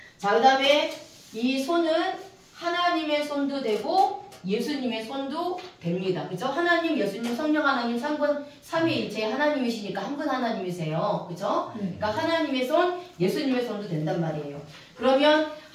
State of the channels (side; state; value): both; identical; correlation 1.00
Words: 자, 그 다음에 이 손은 하나님의 손도 되고 예수님의 손도 됩니다. 그죠? 하나님, 예수님, 성령 하나님 삼위일체 하나님이시니까 한 분 하나님이세요. 그죠? 그러니까 하나님의 손, 예수님의 손도 된단 말이에요. 그러면